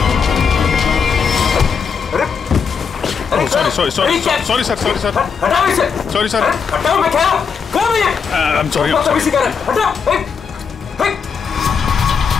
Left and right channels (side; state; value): right; quieter; 6.2 dB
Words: Sorry sir. हटाओ इसे। Sorry sir. हटाओ, मैं क्या कौन है ये? I'm sorry, बहुत तमीज़ कर रहे हैं। हटाओ।